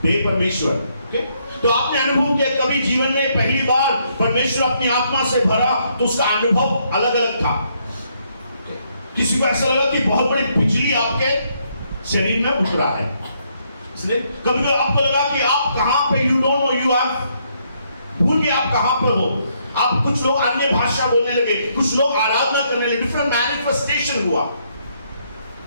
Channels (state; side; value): inverted; both; correlation -0.73